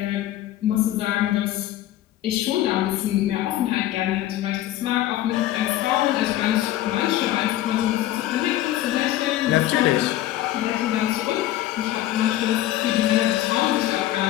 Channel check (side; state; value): right; quieter; 14.0 dB